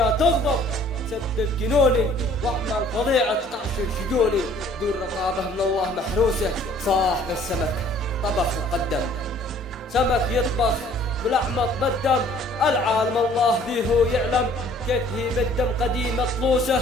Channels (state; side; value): normal; both; correlation 0.55